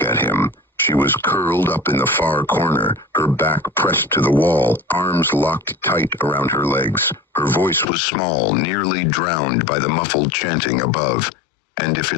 at him. She was curled up in the far corner, her back pressed to the wall, arms locked tight around her legs. Her voice was small, nearly drowned by the muffled chanting above. "And if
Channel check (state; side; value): drops out; right; at 7.9 s